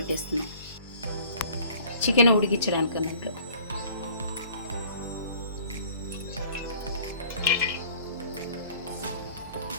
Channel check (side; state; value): both; inverted; correlation -0.51